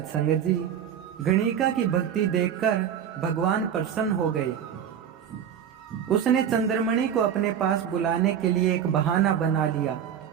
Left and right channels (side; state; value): left; quieter; 8.9 dB